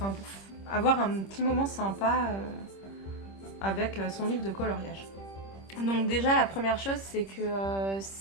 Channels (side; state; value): right; late; 26 ms